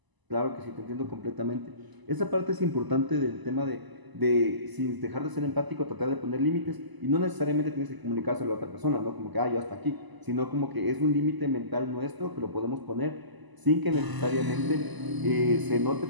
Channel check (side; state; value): left; late; 1.0 ms